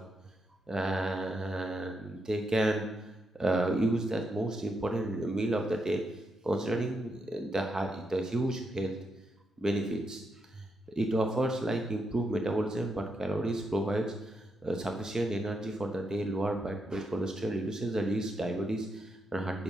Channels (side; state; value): both; normal; correlation 0.82